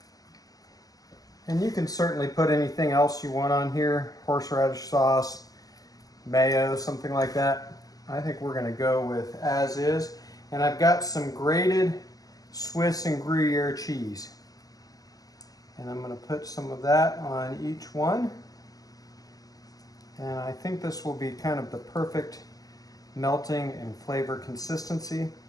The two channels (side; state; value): right; late; 0.17 ms